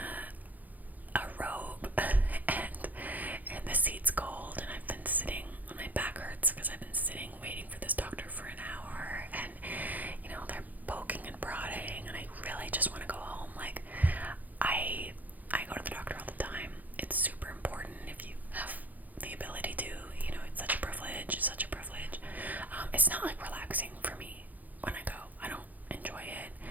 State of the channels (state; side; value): late; left; 0.082 ms